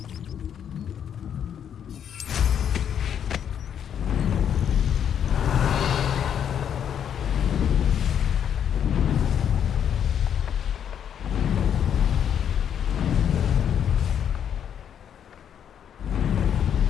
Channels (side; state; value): right; quieter; 8.8 dB